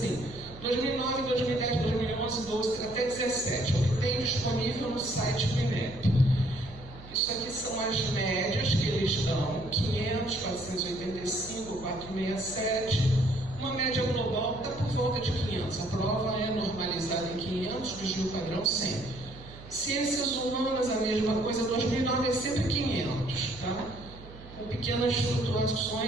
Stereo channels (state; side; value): noise; right; hum, 18 dB below the sound